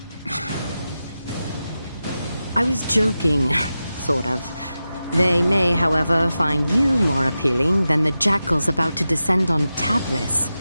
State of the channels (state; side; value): inverted; both; correlation -0.92